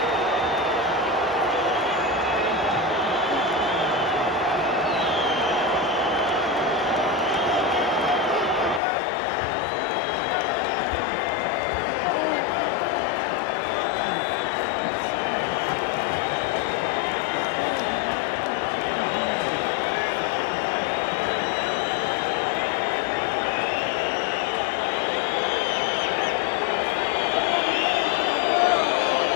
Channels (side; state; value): right; drops out; at 8.8 s